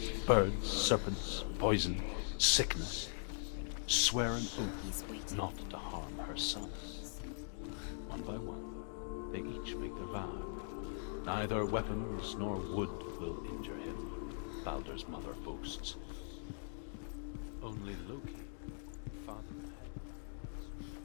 birds, serpents, poison, sickness, swear an oath not to harm her son. One by one, they each make their vow. Neither weapons nor wood will injure him, Baldur's mother boasts. Only Loki, father of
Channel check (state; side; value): silent; right; digital silence